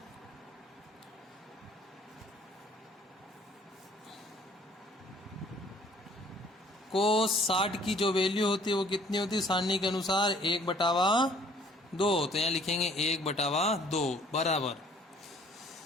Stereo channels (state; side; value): normal; both; correlation 0.57